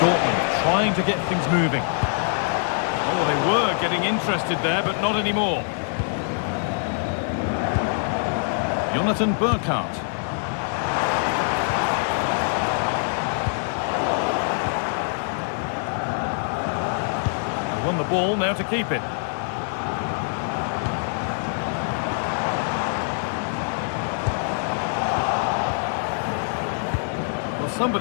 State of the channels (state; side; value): silent; right; digital silence